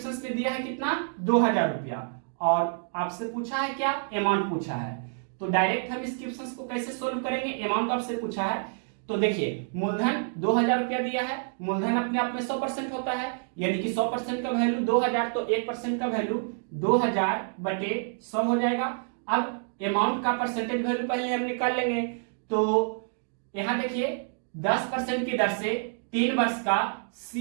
में दिया है कितना 2,000 रुपया, और आपसे पूछा है क्या अमाउंट पूछा है। तो डायरेक्ट हम इस क्वेश्चन को कैसे सोल्व करेंगे, अमाउंट आपसे पूछा है। तो देखिए मूलधन 2000 रुपया दिया है, मूलधन अपने आप में 100% होता है, यानी कि 100% का वैल्यू 2000, तो 1% का वैल्यू 2000 बटे 100 हो जाएगा। अब अमाउंट का परसेंटेज वैल्यू पहले हम निकाल लेंगे। तो यहां देखिए 10% की दर से 3 वर्ष का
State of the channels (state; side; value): silent; left; digital silence